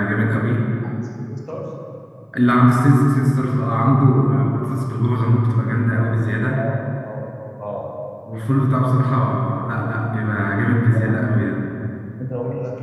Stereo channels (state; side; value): identical; both; correlation 1.00